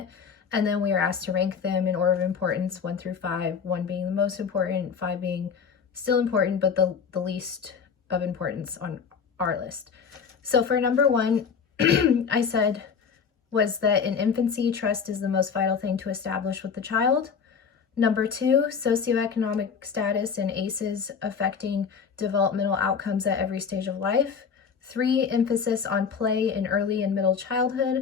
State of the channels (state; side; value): quieter; right; 6.3 dB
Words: And then we were asked to rank them in order of importance, 1 through 5, 1 being the most important, 5 being still important, but the least of importance on our list. So for number 1, I said was that in infancy, trust is the most vital thing to establish with the child. Number 2, socioeconomic status and ACEs affecting developmental outcomes at every stage of life. 3, emphasis on play in early and middle